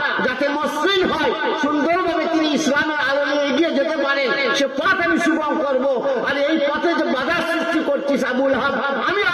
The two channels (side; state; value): both; identical; correlation 1.00